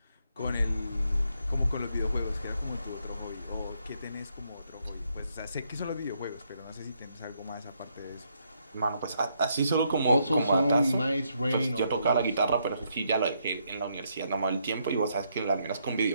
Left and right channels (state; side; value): inverted; both; correlation -0.76